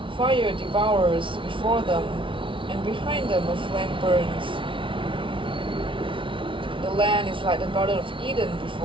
Fire devours before them, and behind them a flame burns. The land is like the Garden of Eden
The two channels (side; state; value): left; late; 0.25 ms